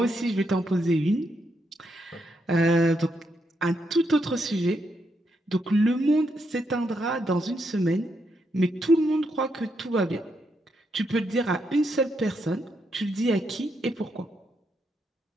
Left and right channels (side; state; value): both; normal; correlation 0.80